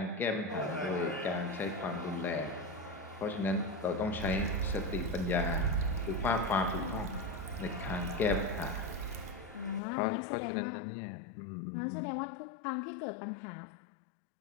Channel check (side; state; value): right; drops out; at 9.8 s